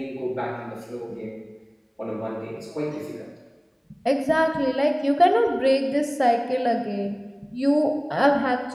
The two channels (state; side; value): identical; both; correlation 1.00